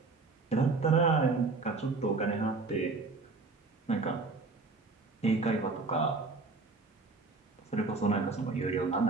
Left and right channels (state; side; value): quieter; left; 3.9 dB